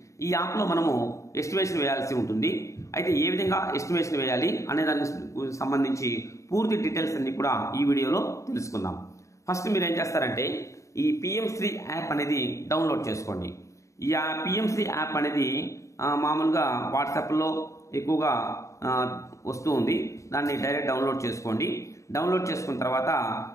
ఈ యాప్లో మనము ఎస్టిమేషన్ వేయాల్సి ఉంటుంది. అయితే ఏ విధంగా ఎస్టిమేషన్ వేయాలి అనే దానికి సంబంధించి పూర్తి డీటెయిల్స్ అన్ని కూడా ఈ వీడియోలో తెలుసుకుందాం. ఫస్ట్ మీరు ఏం చేస్తారంటే ఈ పిఎం3 యాప్ అనేది డౌన్లోడ్ చేసుకోండి. ఈ పిఎం3 యాప్ అనేది మామూలుగా వాట్సాప్లో ఎక్కువగా వస్తూ ఉంది. దాన్ని డైరెక్ట్ డౌన్లోడ్ చేసుకోండి. డౌన్లోడ్ చేసుకున్న తర్వాత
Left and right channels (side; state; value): right; late; 0.15 ms